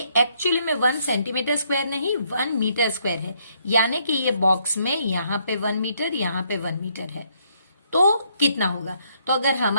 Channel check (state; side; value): inverted; both; correlation -0.71